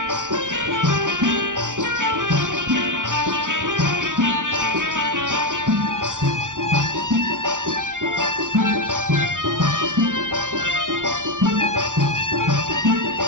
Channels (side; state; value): left; late; 0.87 ms